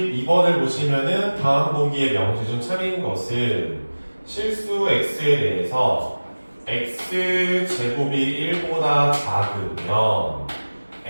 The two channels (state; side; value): inverted; both; correlation -1.00